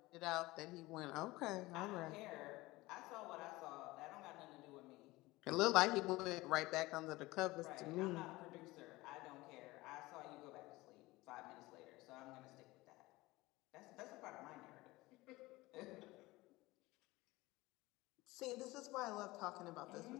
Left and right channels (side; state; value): right; quieter; 20.3 dB